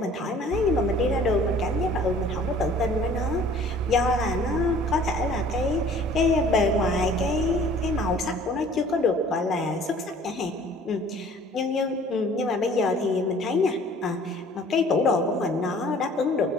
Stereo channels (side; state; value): both; normal; correlation 0.52